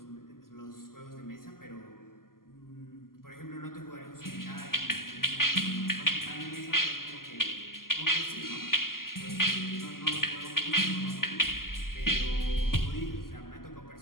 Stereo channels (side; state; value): right; late; 0.92 ms